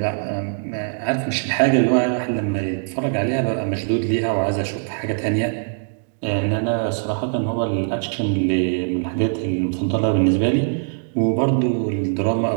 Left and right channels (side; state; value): left; silent; digital silence